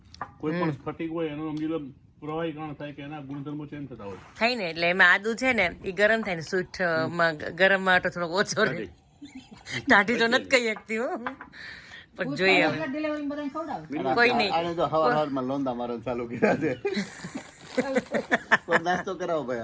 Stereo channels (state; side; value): identical; both; correlation 1.00